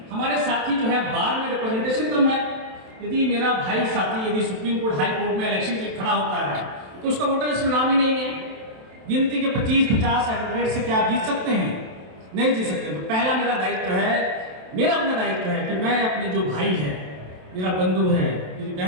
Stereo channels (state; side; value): late; left; 27 ms